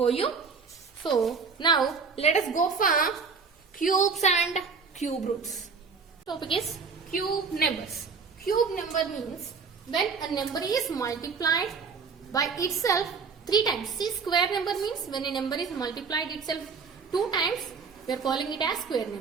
you. So, now let us go for cubes and cube roots. Topic is cube numbers. Cube number means when a number is multiplied by itself 3 times. See, square number means when a number is multiplied itself 2 times. we are calling it as square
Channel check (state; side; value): quieter; left; 5.3 dB